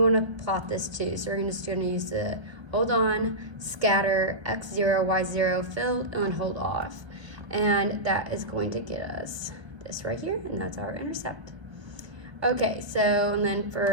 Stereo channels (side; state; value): left; late; 1.3 ms